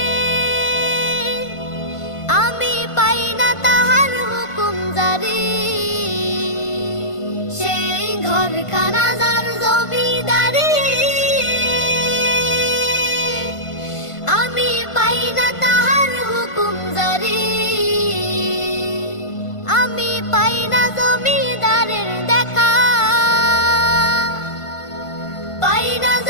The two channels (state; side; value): late; right; 1.5 ms